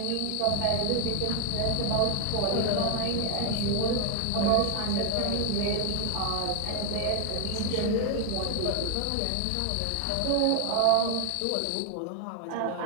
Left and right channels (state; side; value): different; both; correlation 0.01